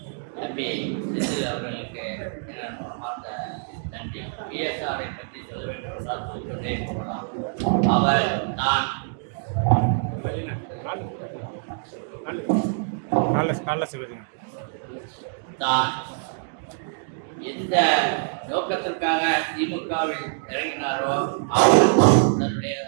தம்பி செந்தில் அவர்களுக்கு மனமார்ந்த நன்றி. பிஎஸ்ஆரை பற்றி சொல்ல வேண்டும் என்றால் சொல்லிக்கொண்டே போகலாம். அவர் தான் தான் எந்த நோக்கத்திற்காக திமுகவில் இறங்கினாரோ அவர் தன்னுடைய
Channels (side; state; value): left; silent; digital silence